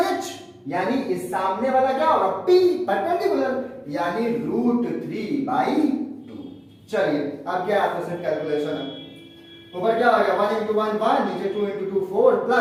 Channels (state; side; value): identical; both; correlation 1.00